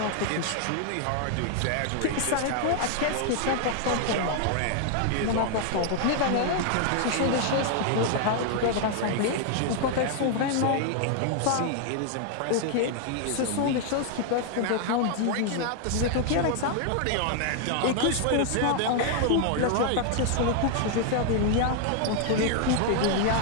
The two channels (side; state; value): both; different; correlation 0.00